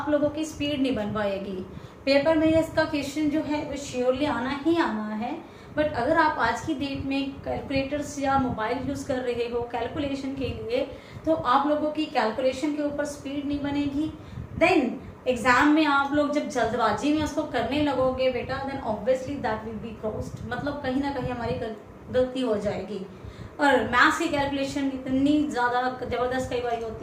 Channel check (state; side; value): identical; both; correlation 1.00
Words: लोगों की स्पीड नहीं बन पाएगी. पेपर में इसका क्वेश्चन जो है वो श्योरली आना ही आना है. बट अगर आप आज की डेट में कैलकुलेटर्स या मोबाइल यूज़ कर रहे हो कैलकुलेशन के लिए, तो आप लोगों की कैलकुलेशन के ऊपर स्पीड नहीं बनेगी. देन एग्जाम में आप लोग जब जल्दबाजी में उसको करने लगोगे बेटा, then obviously that will be crossed. मतलब कहीं ना कहीं हमारी गलती हो जाएगी. और मैथ्स की कैलकुलेशन इतनी ज़्यादा ज़बरदस्त कई बार